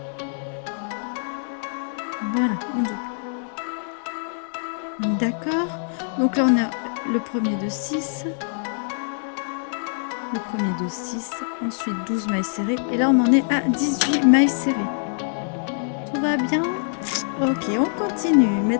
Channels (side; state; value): right; silent; digital silence